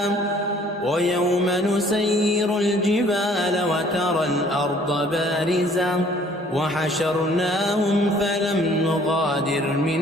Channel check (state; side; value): normal; both; correlation 0.57